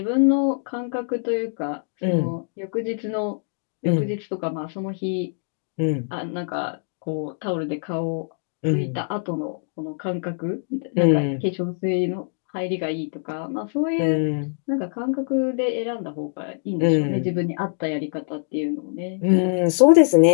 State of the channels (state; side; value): silent; right; digital silence